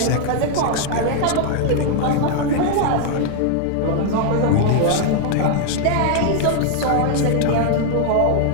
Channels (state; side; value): different; both; correlation 0.00